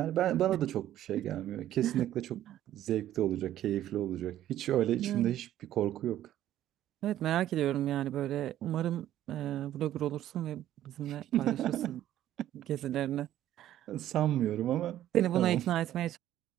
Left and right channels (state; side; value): quieter; left; 12.5 dB